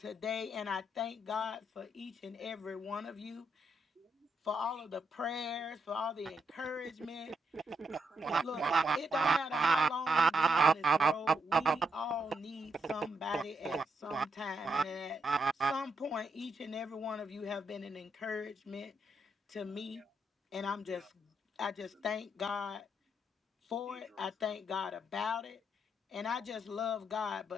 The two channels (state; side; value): normal; both; correlation 0.79